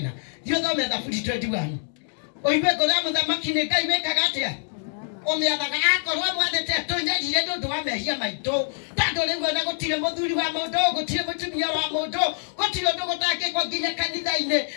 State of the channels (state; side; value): silent; right; digital silence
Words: thio thome Thaburi 21 oiwe ngora muthamaki ni Ngai wekaga atia omiathaga akorwo mwathete tunyarire ndu wa mehia maitu tando riu ona gutire muthuri wa mundu gutire mutumia wa mundu gutire ndu gutangikwo nginya kanitha-ini